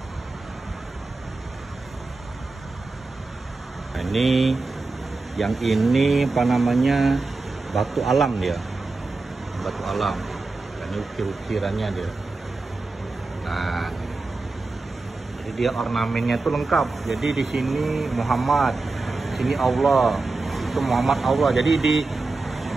Nah, ini yang ini apa namanya, batu alam dia, batu alam. Ini ukir-ukirannya dia. Nah, jadi dia ornamennya itu lengkap. Jadi di sini Muhammad, sini Allah, itu Muhammad Allah. Jadi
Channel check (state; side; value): quieter; left; 3.5 dB